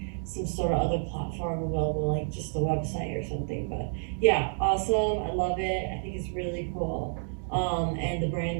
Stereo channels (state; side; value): silent; left; digital silence